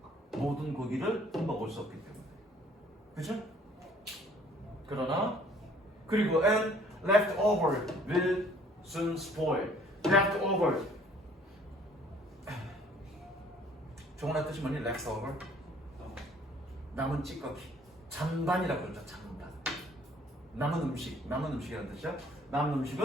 모든 고기를 먹을 수 없기 때문에. 그죠? 그리고 and leftover will soon spoil. leftover. 종원의 뜻이 뭐니? leftover. 남은 찌꺼기. 잔반이라고 그러죠. 잔반. 남은 음식이라는 뜻이야. 남은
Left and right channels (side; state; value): both; normal; correlation 0.57